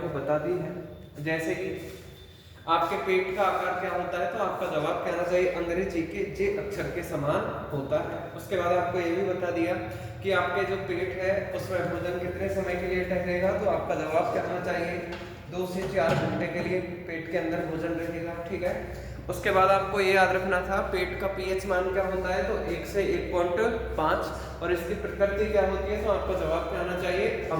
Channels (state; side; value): identical; both; correlation 1.00